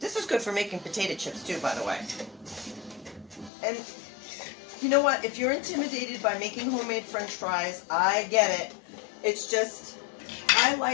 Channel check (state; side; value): drops out; right; at 3.5 s